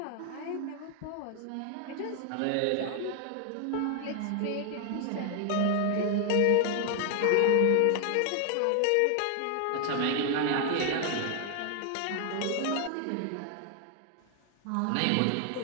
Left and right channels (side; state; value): both; different; correlation 0.00